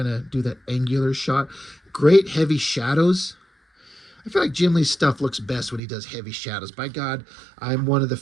of do that angular shot. Great heavy shadows. I feel like Jim Lee's stuff looks best when he does heavy shadows. By God, I'm one of the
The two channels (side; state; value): left; drops out; at 5.8 s